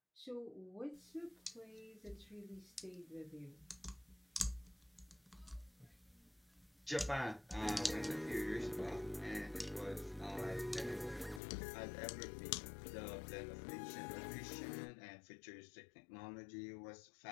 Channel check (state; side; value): drops out; right; at 11.4 s